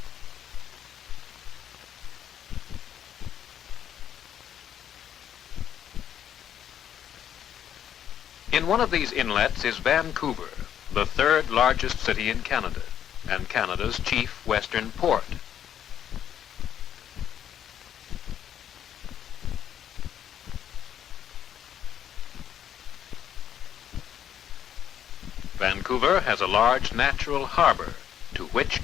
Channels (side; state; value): right; quieter; 9.7 dB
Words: In one of these inlets is Vancouver, the 3rd largest city in Canada, and Canada's chief western port. Vancouver has a large natural harbor, to